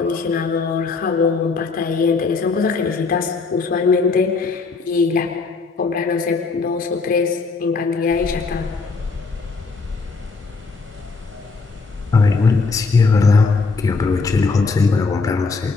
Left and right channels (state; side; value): quieter; right; 4.3 dB